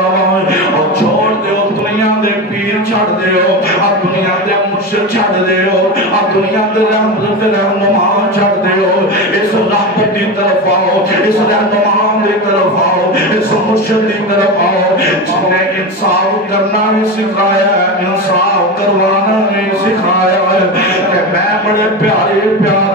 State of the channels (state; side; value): normal; both; correlation 0.21